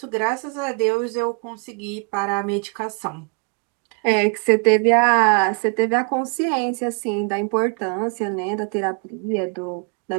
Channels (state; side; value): quieter; left; 37.3 dB